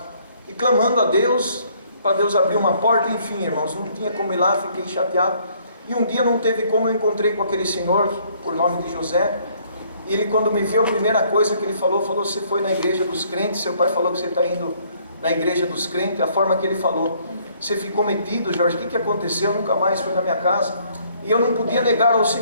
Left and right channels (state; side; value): inverted; both; correlation -0.64